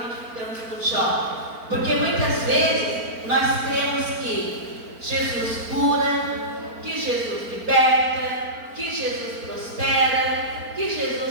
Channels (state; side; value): late; left; 4.4 ms